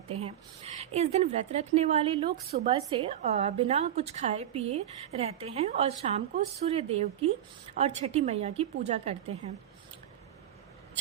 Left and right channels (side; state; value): left; quieter; 11.1 dB